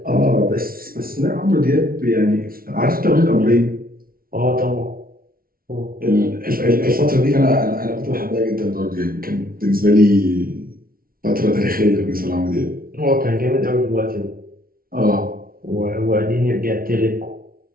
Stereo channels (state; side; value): late; left; 0.43 ms